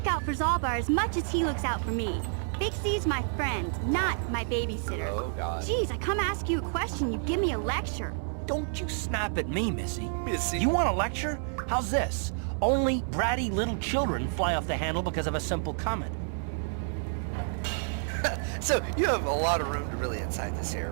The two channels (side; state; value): left; silent; 58 dB below the other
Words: out for Zalbar as much as he looks out for me. Big C's my friend, not my babysitter. Oh, God. Jeez, I come ask you a question, you give me a lecture. Don't you snap at me, Missy. Missy. You want a lecture? How's this? Only bratty little children fly off the handle because of a simple comment. So, you have a lot of room to really incite this here.